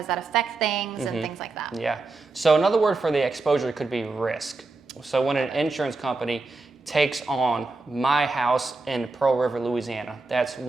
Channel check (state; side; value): quieter; left; 3.5 dB